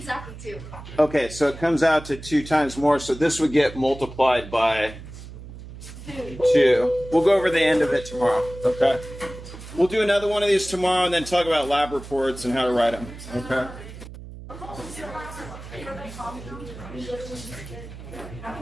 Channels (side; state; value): right; noise; hum, 14 dB below the sound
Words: 2. Okay, so it comes out to 2 times more, so this would get multiplied by 2. We'll go over the end of it tomorrow, okay? We'll do another one of these tomorrow and then talk about lab reports and how to write them, okay?